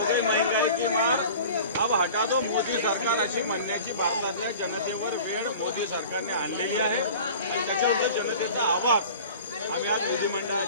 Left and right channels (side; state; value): both; inverted; correlation -0.40